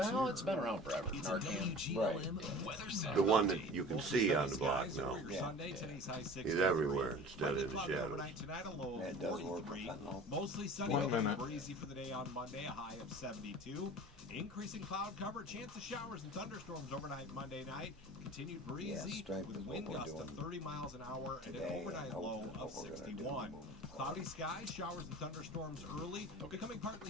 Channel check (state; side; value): normal; both; correlation 0.40